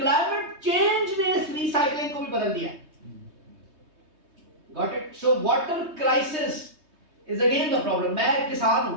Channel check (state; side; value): late; left; 3.2 ms